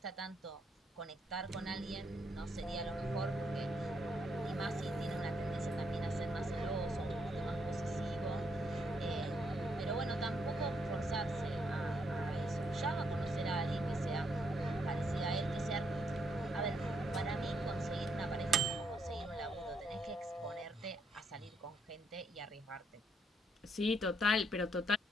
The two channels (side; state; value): both; normal; correlation 0.75